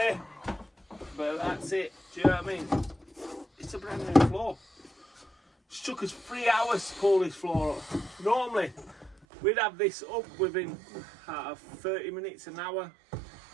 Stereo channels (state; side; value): drops out; left; at 9.2 s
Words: but that's it. Do you know what I mean? It's a brand new floor. It took us 3 hours to pull this floor up. Normally, we'd have this up within 30 minutes, an hour.